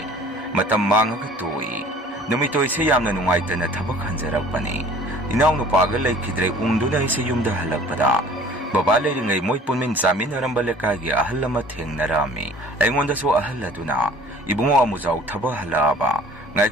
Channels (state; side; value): normal; both; correlation 0.50